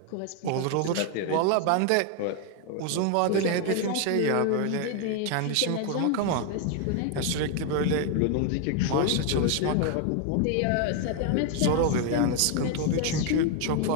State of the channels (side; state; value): both; different; correlation 0.01